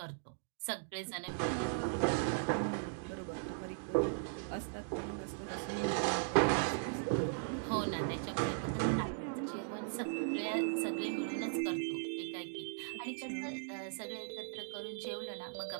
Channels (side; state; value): left; silent; digital silence